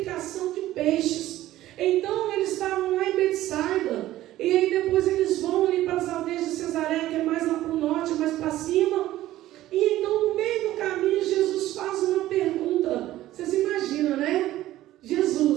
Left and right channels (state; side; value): quieter; left; 14.8 dB